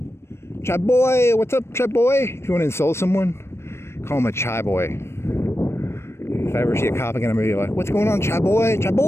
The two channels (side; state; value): right; late; 0.13 ms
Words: Chai boy, what's up, chai boy? If you want to insult someone, call him a chai boy. If I ever see a cop again, I'm gonna be like, what's going on, chai boy? Chai